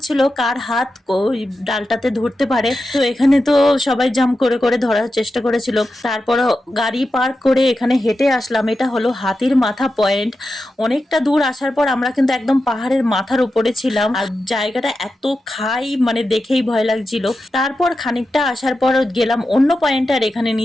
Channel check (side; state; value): both; normal; correlation 0.91